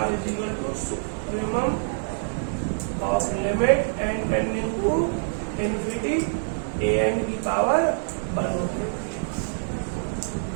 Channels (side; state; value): left; silent; 61 dB below the other